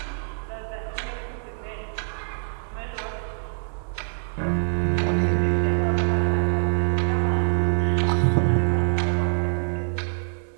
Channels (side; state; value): left; silent; 61 dB below the other